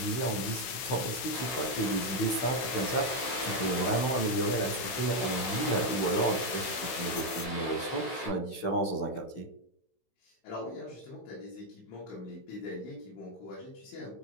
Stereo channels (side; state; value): right; late; 16 ms